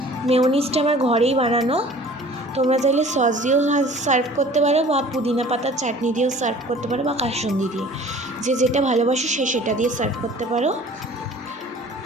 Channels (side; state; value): both; normal; correlation 0.47